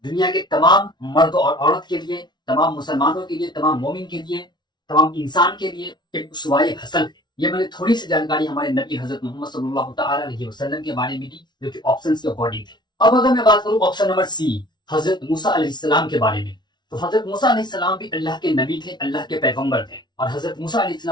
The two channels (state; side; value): late; right; 0.21 ms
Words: दुनिया के तमाम मर्द और औरत के लिए, तमाम मुसलमानों के लिए, तमाम मोमिन के लिए, तमाम इंसान के लिए एक उसवाए हसन है। ये मैंने थोड़ी सी जानकारी हमारे नबी हजरत मोहम्मद सल्लल्लाहु तआला अलैहि वसल्लम के बारे में दी, जो कि ऑप्शंस के अकॉर्डिंग थे। अब अगर मैं बात करूं ऑप्शन नंबर सी हजरत मूसा अलैहिस्सलाम के बारे में, तो हजरत मूसा अलैहिस्सलाम भी अल्लाह के नबी थे, अल्लाह के पैगंबर थे, और हजरत मूसा